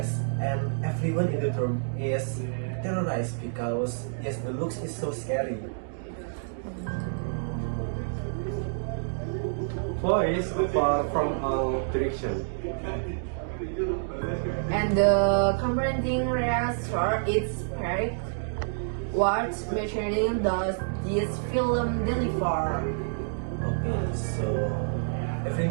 and everyone in the room is terrorized because yes, the looks is so scary. Voice far from all direction. And the confronting reactor is correct. What material does this film deliver? Okay, so every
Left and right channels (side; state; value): left; silent; digital silence